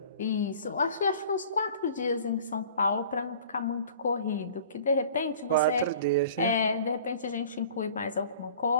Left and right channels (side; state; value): both; inverted; correlation -0.46